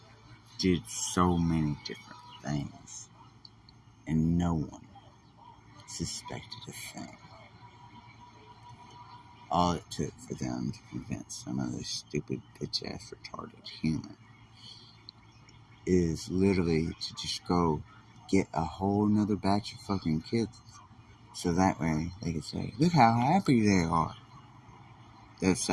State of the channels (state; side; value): identical; both; correlation 1.00